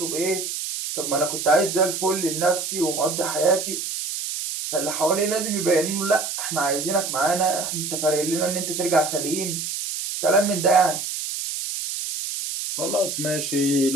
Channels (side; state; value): right; noise; hiss, 4 dB below the sound